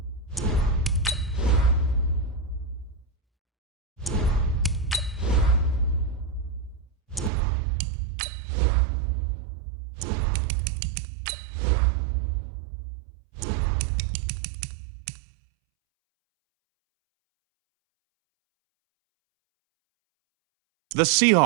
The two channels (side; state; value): left; drops out; at 7.3 s